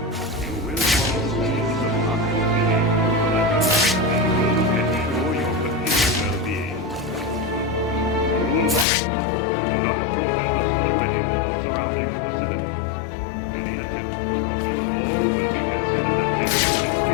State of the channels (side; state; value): right; drops out; at 8.8 s